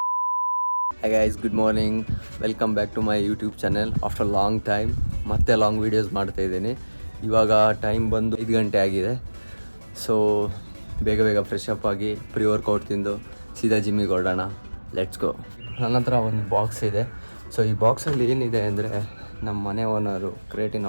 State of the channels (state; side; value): inverted; both; correlation -1.00